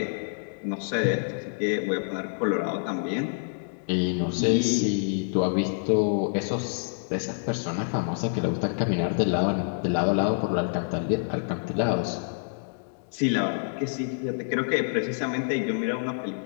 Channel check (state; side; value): silent; right; digital silence